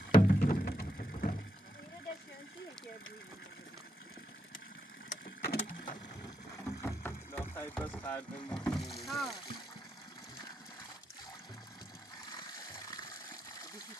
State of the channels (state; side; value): normal; both; correlation 0.82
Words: ایران دستیانشیه که لا خیلی بس خردم ها